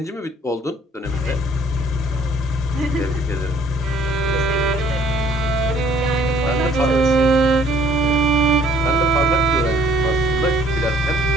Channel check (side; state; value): both; normal; correlation 0.58